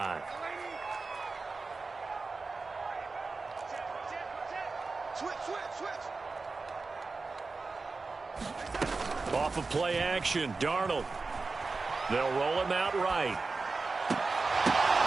Off of play action, Darnold. They'll roll him out right.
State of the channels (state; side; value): quieter; left; 4.0 dB